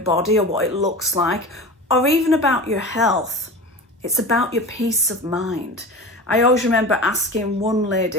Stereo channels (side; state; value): both; normal; correlation 0.32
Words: or what it looks like, or even about your health. It's about your peace of mind. I always remember asking one